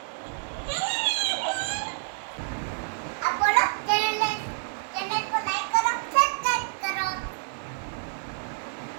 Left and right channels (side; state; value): left; silent; digital silence